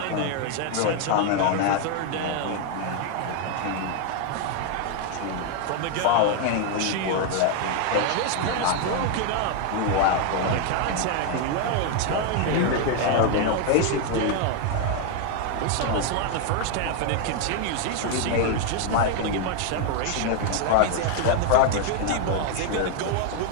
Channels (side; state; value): both; different; correlation 0.01